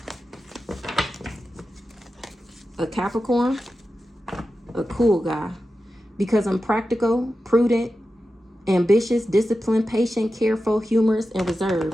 A Capricorn, a cool guy. Because I'm practical, prudent, ambitious, disciplined, patient, careful, humorous, and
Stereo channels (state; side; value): normal; both; correlation 0.92